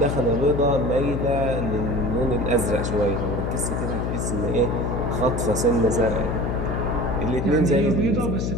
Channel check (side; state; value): left; noise; hum, 1 dB below the sound